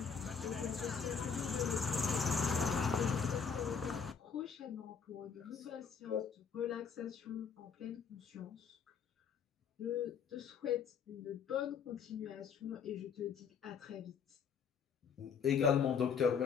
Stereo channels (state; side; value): quieter; right; 6.5 dB